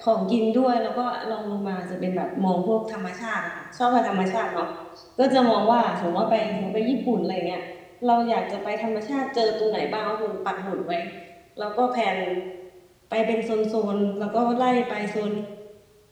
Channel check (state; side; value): identical; both; correlation 1.00